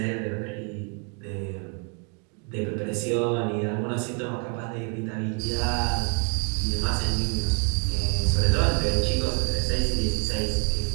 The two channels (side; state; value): left; quieter; 37.9 dB